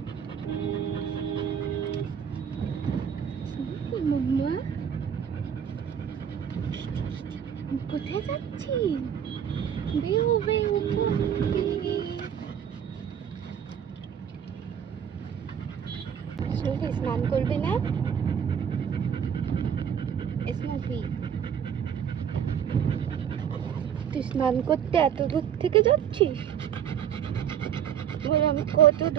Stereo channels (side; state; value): left; quieter; 8.5 dB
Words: Snoopy মাম্মা কোথায় যাচ্ছি? বেও বেও Snoopy স্নান করবে না? স্নুপি তুই স্নান করতে এত দূর থেকে যাচ্ছিস? বলে আমি কত